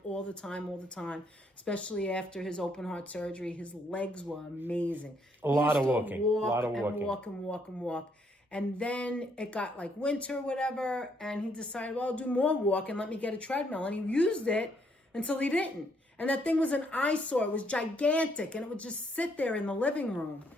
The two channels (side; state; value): both; normal; correlation 0.71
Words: especially after his open heart surgery. His legs were amazing. A lot of walking. Walk. And then it got like winter or whatever, and he decided, well, I'll do more walk and let me get a treadmill. And he used it until he didn't. And that thing was an eyesore. It was gigantic, and it would just sit there in the living room.